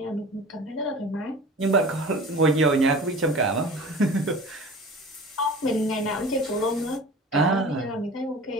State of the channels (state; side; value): normal; both; correlation 0.39